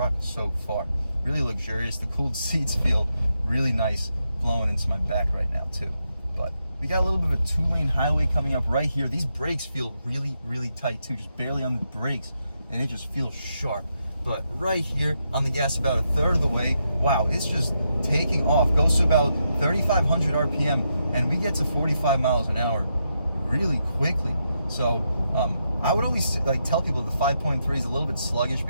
so far. Really luxurious. The cooled seats feel really nice blowing into my back right now too. But we got a little bit of a 2-lane highway coming up right here. These brakes feel really, really tight too, just barely on the brakes, and it just feels sharp. But right here on the gas, about a third of the way, wow, it's just taking off. Goes to about 3,500 RPM, and we get to 45 miles an hour really quickly. So I would always like tell people the 5.3 is a little bit sluggish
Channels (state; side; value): inverted; both; correlation -0.83